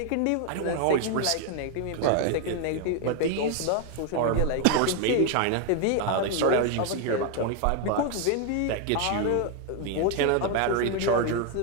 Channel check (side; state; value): both; different; correlation 0.01